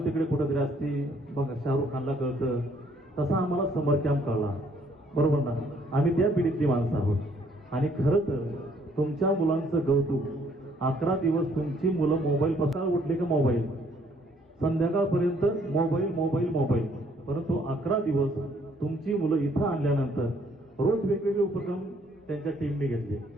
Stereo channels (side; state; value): both; normal; correlation 0.64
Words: तिकडे कुठंतरी असती बघा, शाहरुख खानला कळतं तसा आम्हाला समर कॅम्प कळला बरोबर ना. आम्ही त्या पिढीतली माणसं आहोत आणि खरं तर तुमच्या मुलांचं कौतुक, 11 दिवस तुमची मुलं मोबाईल पसार उठले का मोबाईल, संध्याकाळपर्यंत मोबाईल मोबाईल मोबाईल, परंतु 11 दिवस तुमची मुलं इथं आणल्यानंतर रोज वेगवेगळे उपक्रम त्यांच्या टीमने घेतले